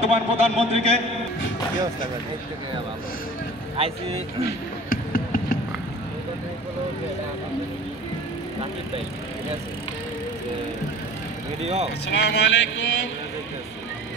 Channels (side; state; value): both; normal; correlation 0.43